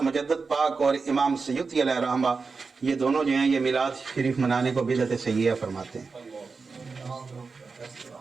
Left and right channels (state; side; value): quieter; left; 4.6 dB